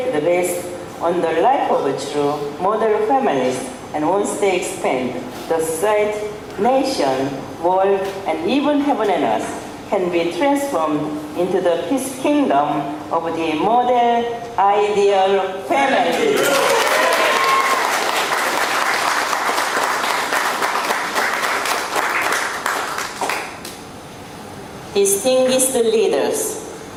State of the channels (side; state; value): both; identical; correlation 1.00